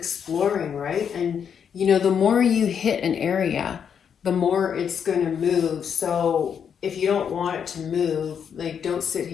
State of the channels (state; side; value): quieter; right; 7.6 dB